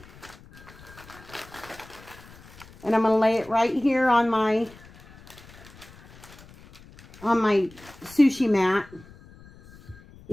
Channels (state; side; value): noise; left; rumble, 22 dB below the sound